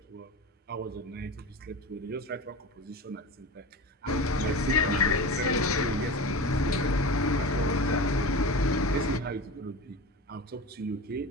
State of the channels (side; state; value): both; normal; correlation 0.29